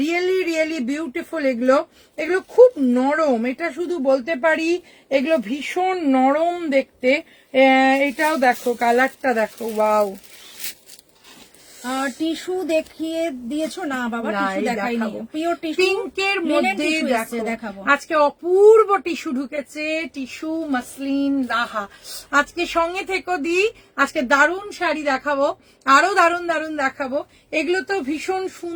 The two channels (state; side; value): identical; both; correlation 1.00